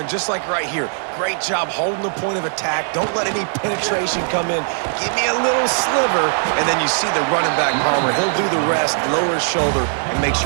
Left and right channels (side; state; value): left; silent; 56 dB below the other